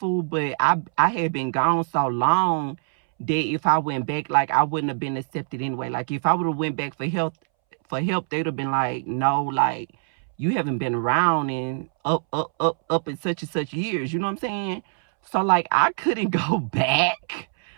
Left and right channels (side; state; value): left; silent; 63 dB below the other